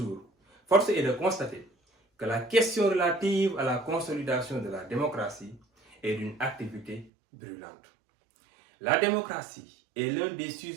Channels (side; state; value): left; drops out; at 7.1 s